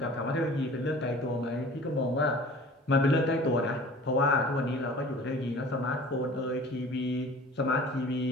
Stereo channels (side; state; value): both; normal; correlation 0.44